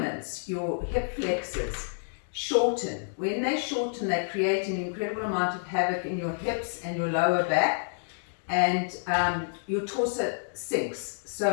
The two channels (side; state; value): right; silent; digital silence